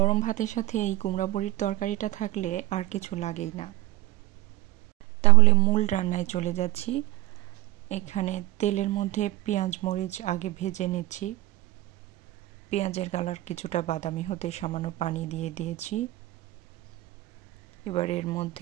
ভাতের সাথে এই কুমড়া বড়ির তরকারিটা থাকলে আর কিছু লাগেই না। তাহলে মূল রান্নায় চলে যাচ্ছি। এখানে তেলের মধ্যে পেঁয়াজ মরিচ আগে ভেজে নিচ্ছি। পেঁয়াজের কালার কিছুটা বাদামি হতে সামান্য পানি দিয়ে দিয়েছি। এবার এর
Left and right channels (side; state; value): left; quieter; 17.7 dB